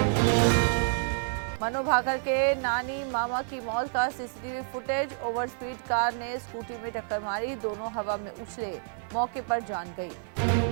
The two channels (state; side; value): silent; left; 59 dB below the other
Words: मनु भाकर के नानी मामा की मौत का CCTV footage, over speed car ने स्कूटी में टक्कर मारी, दोनों हवा में उछले, मौके पर जान गई।